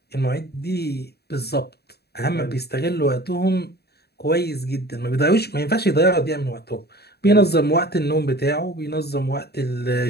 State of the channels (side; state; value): right; late; 0.47 ms